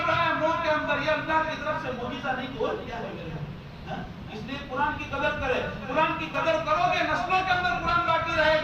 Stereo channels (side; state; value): both; identical; correlation 1.00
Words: رہا ہے منہ کے اندر, یہ اللہ کی طرف سے معجزہ نہیں تو اور کیا ہے میرے. اس لیے قرآن کی قدر کرے. قرآن کی قدر کرو گے نسلوں کے اندر قرآن باقی رہے